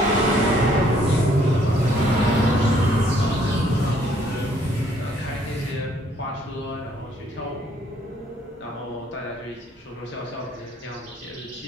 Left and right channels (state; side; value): normal; both; correlation 0.65